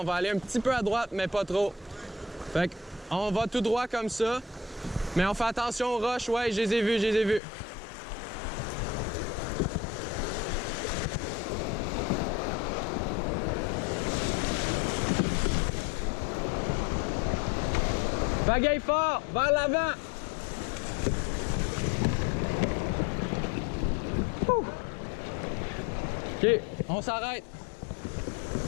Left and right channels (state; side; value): drops out; right; at 7.4 s